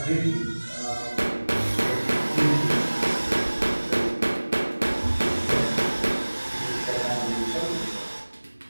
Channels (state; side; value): inverted; both; correlation -1.00